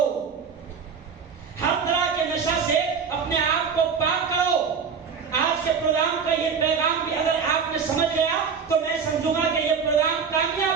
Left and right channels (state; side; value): quieter; left; 6.1 dB